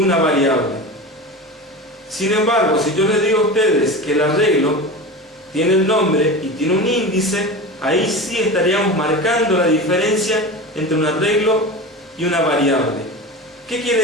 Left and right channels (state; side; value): normal; both; correlation 0.29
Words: variable. Sin embargo, si yo les digo a ustedes que el arreglo tiene el nombre y tiene un índice, ahí sí estaríamos marcando la diferencia entre un arreglo y una variable. ¿Qué